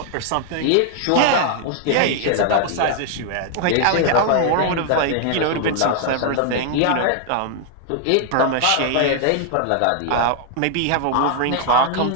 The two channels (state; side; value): different; both; correlation 0.00